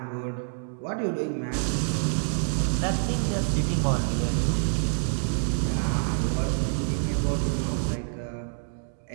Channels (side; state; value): left; silent; digital silence